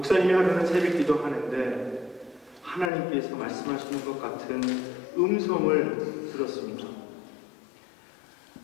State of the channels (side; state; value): right; drops out; at 2.9 s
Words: 하루는 새벽기도 하는데 하나님께서 말씀하시는 것 같은 음성을 들었습니다.